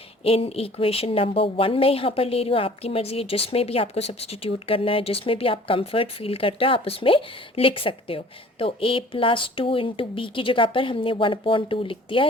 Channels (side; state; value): both; normal; correlation 0.50